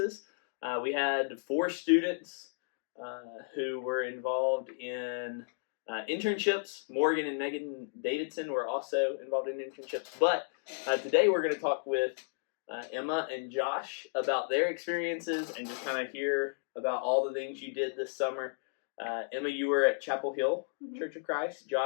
We had 4 students who were involved in internships. Morgan and Megan Davidson were also involved in internships. But today we're going to talk with Emma and Josh about their experiences and just kind of hear about all the things you did this summer. Emma, you were at Chapel Hill Church of Christ.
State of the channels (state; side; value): silent; right; digital silence